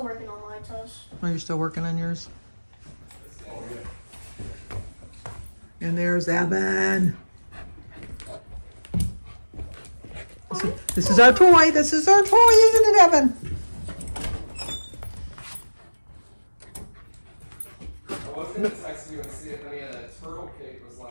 working on my test. Are you still working on yours? And there's Evan. This is our toy. This is our toy, isn't it, Evan? I was going to text you and see if any of that turtle cake was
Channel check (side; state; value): both; inverted; correlation -1.00